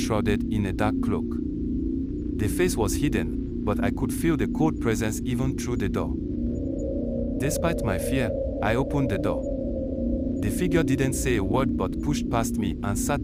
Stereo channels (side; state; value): both; identical; correlation 1.00